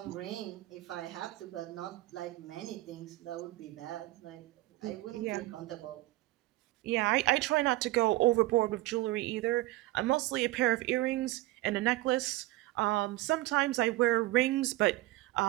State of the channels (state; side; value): quieter; left; 18.1 dB